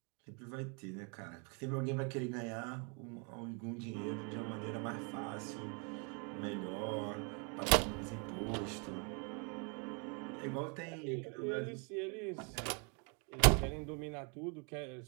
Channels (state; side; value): quieter; left; 35.7 dB